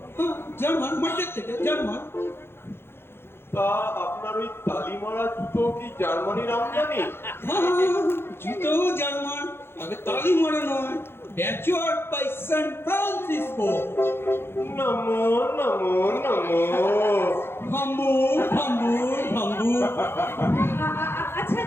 জার্মান, মার্কেট থেকে জার্মান। তা আপনার ওই তালিমারা জুতো কি জার্মানির আমদানি? জুতো জার্মান, তবে তালি মারা নয়, ব্যাচওয়ার্ড বাই সান ফ্রান্সিসকো। নমো নমো নমো। হাম্বুর হাম্বুর হাম্বুর।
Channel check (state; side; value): late; right; 0.11 ms